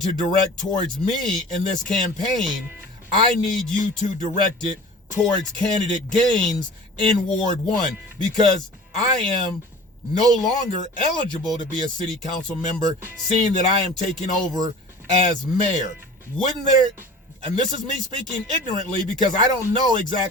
direct towards me in this campaign, I need you to direct it towards candidate Gaines in Ward 1, because I am no longer eligible to be a city council member, seeing that I am taking over as mayor. Wouldn't there, and this is me speaking ignorantly because I don't know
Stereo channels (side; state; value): both; normal; correlation 0.41